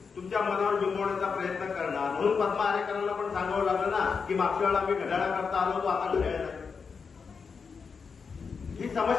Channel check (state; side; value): quieter; right; 5.6 dB